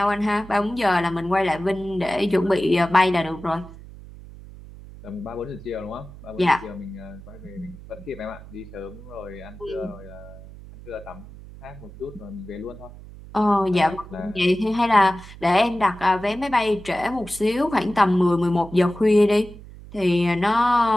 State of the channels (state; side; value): noise; right; hum, 17 dB below the sound